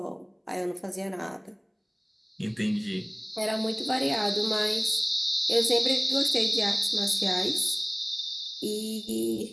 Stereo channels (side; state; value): both; identical; correlation 1.00